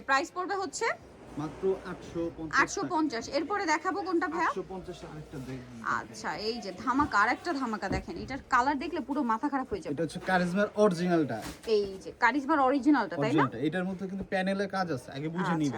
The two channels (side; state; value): both; identical; correlation 1.00